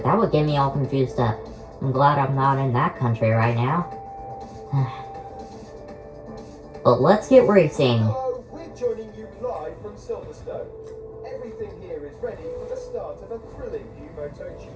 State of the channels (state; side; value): identical; both; correlation 1.00